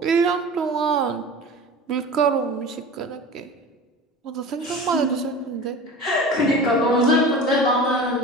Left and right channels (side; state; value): both; normal; correlation 0.35